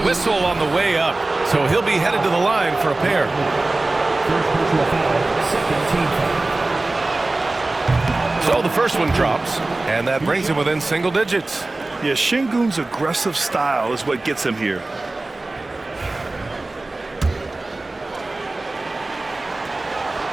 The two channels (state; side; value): quieter; left; 3.0 dB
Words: on the way up, so he'll be headed to the line for a pair. First personal foul, second team foul. So the first one drops, and that brings him within single digits. Yeah, Şengün's aggressive style is what gets him here.